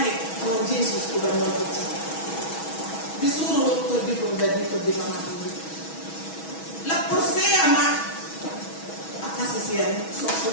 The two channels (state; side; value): late; right; 6.2 ms